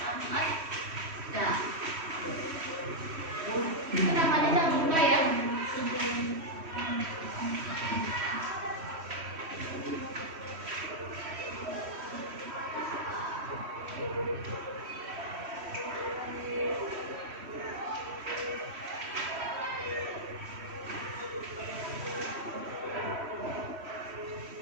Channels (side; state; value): left; late; 3.1 ms